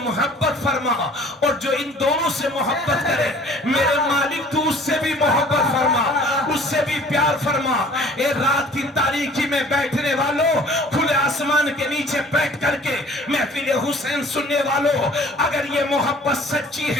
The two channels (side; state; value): both; normal; correlation 0.51